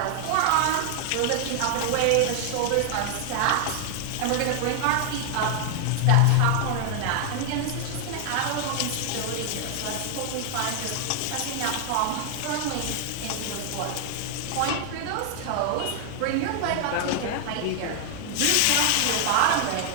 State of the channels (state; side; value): different; both; correlation 0.00